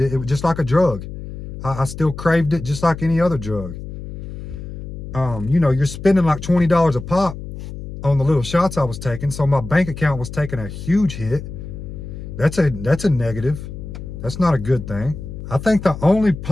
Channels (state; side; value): noise; left; hum, 10 dB below the sound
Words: it. It was just like a drug. I still craved it just like any other drug. You know, you're spending like $20 a pop on the little shots I was taking. So my bank account was taking a huge hit. That's a negative. That's not a good thing. I think the only